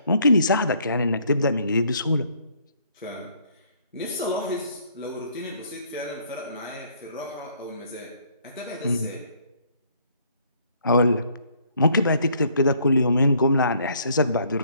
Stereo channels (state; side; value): inverted; both; correlation -0.64